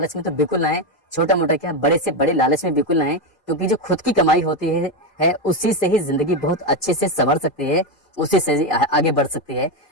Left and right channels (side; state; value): right; late; 2.4 ms